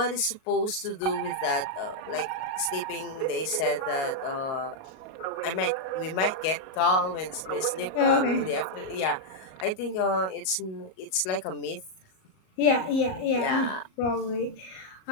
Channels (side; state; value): right; late; 38 ms